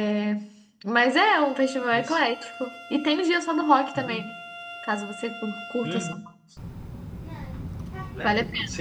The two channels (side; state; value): both; identical; correlation 1.00